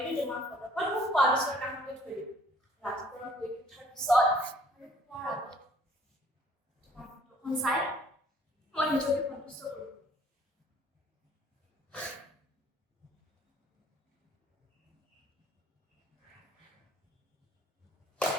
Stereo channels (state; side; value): normal; both; correlation 0.58